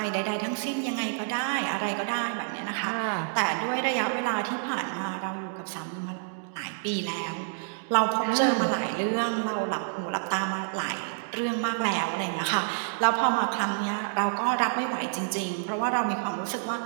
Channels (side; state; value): left; silent; digital silence